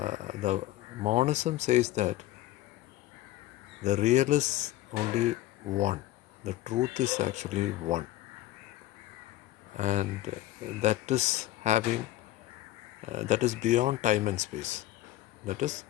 monism says that the real is only one. The truth is actually one. And that is having, that is beyond time and space. That is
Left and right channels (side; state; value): right; quieter; 15.5 dB